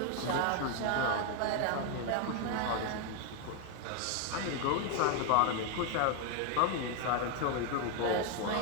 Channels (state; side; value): different; both; correlation 0.01